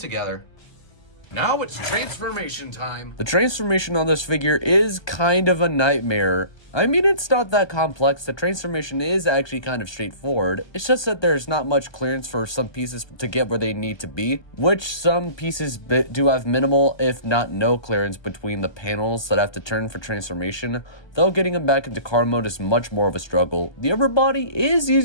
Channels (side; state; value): right; late; 1.2 ms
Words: Now it's transformation time. The transformation on this figure is kind of a nightmare. I mean, it's not that complex. The transformation is actually kind of straightforward. It's just that there's not much clearance for some pieces to get where they need to be, which some pieces do have minimal, if not no clearance between the panels that have to turn for transformation, though getting them back into car mode is much more of a struggle. The upper body is